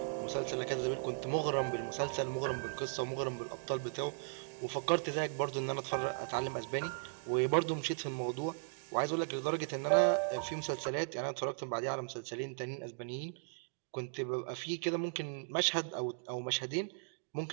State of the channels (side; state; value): left; silent; digital silence